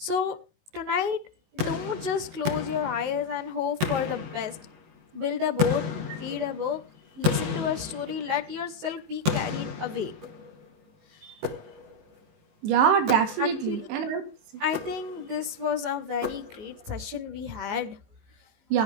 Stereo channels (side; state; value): left; late; 19 ms